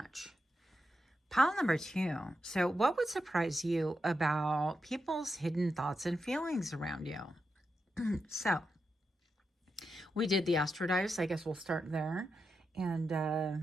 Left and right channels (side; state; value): both; normal; correlation 0.87